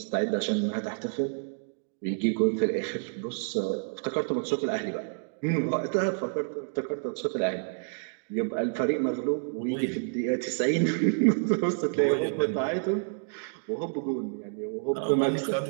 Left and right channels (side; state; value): left; silent; digital silence